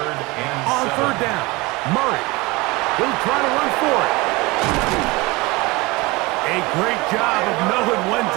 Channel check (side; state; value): left; quieter; 23.4 dB